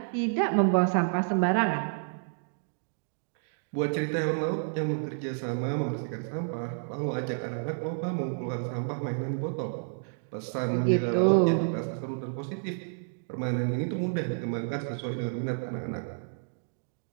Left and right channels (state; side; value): silent; left; digital silence